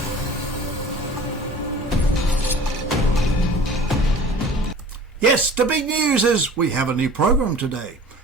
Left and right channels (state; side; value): normal; both; correlation 0.44